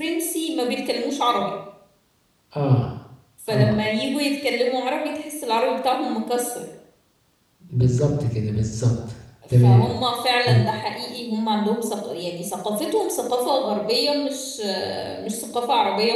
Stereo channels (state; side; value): identical; both; correlation 1.00